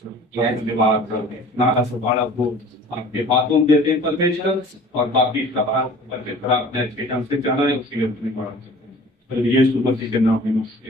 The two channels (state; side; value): normal; both; correlation 0.46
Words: धन्यवाद करते हैं। नारा से बड़ा को आपके बातों में देते हैं परमेश्वर, और बाकी सवाल परमेश्वर आपने अच्छे ढंग से जाना है, उसके लिए धन्यवाद करते हैं। यीशु मसीह के नाम में